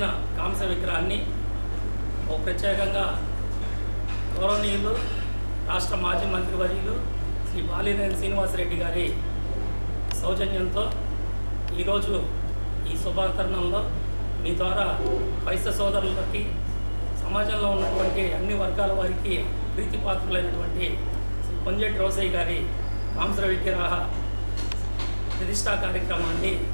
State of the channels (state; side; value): inverted; both; correlation -1.00